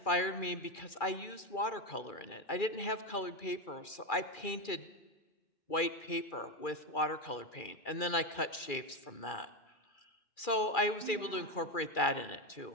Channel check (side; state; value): right; late; 2.4 ms